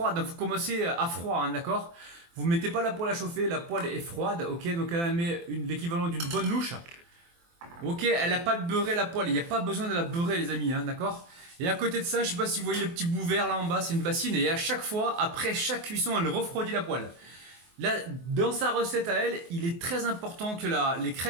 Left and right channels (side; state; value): left; late; 24 ms